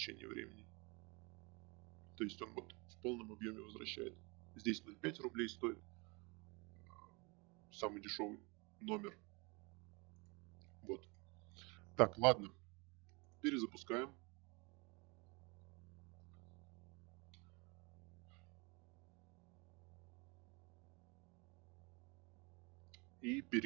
времени. То есть он вот в полном объеме возвращает. Здесь 0,5 рублей стоит самый дешевый номер. Вот. Так, ладно. Перезапускаем. И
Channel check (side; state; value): left; quieter; 28.7 dB